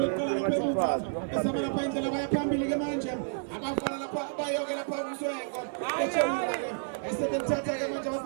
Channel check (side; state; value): left; silent; digital silence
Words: eqala lapha emuva. Esama lapha indlela baya phambili ke manje. Abafana lapha bayoke lapha umswengo. Echela ke. Esethatha ke manje